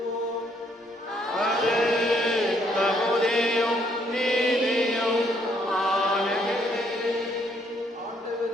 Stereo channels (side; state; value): both; normal; correlation 0.69